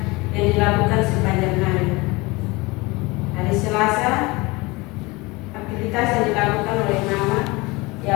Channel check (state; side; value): quieter; right; 23.7 dB